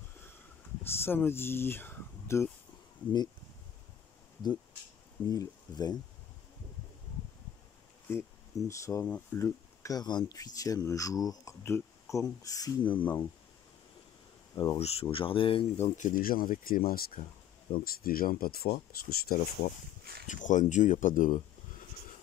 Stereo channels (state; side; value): quieter; right; 9.8 dB